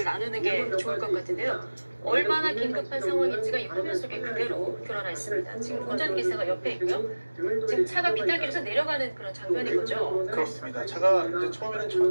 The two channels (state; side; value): inverted; both; correlation -1.00